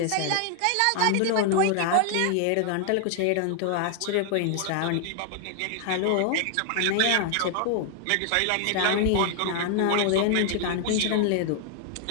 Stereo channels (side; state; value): both; different; correlation 0.00